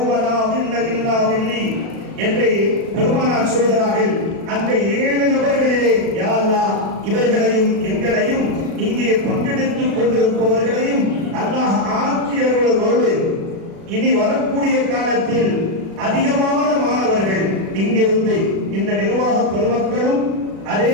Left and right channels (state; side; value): late; left; 36 ms